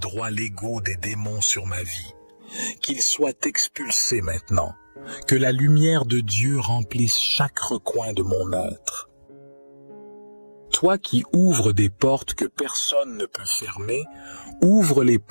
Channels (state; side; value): inverted; both; correlation -1.00